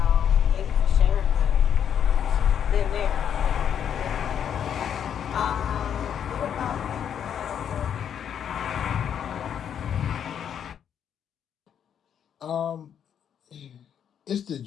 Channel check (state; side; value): quieter; right; 8.7 dB